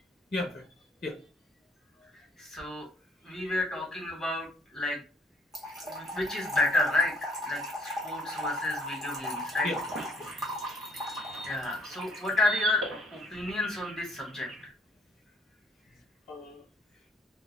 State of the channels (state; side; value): normal; both; correlation 0.61